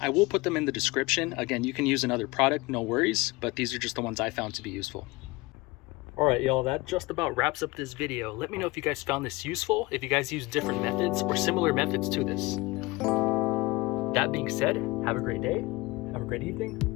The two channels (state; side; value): quieter; right; 22.4 dB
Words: I will put them in the description. Again, you can use another product, no worries, but these are just the ones I found to be useful. All right, y'all, that just about wraps up this video. Let me know if you guys found this useful, if you guys use different methods or similar methods to this. That being said, have a great day, have a great evening.